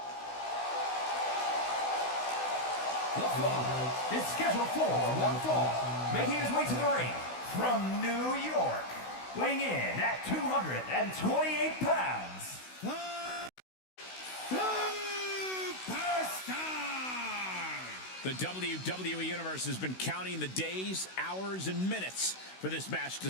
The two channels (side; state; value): right; late; 16 ms